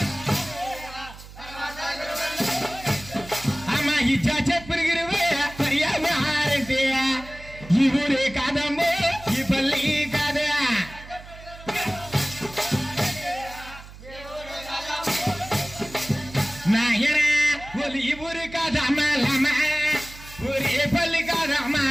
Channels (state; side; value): noise; right; hum, 17 dB below the sound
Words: అమ్మ ఇచ్చా చెప్పులు గురువు పర్యావరణంటే ఈ ఊరే కాదమ్మో ఈ పల్లి కాదా నాయన ఒలి ఈ ఊరు కాదమ్మా ఊరే పల్లి కాదమ్మా